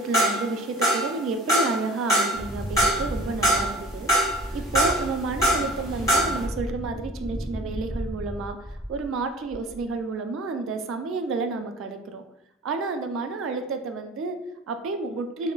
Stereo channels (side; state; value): both; normal; correlation 0.44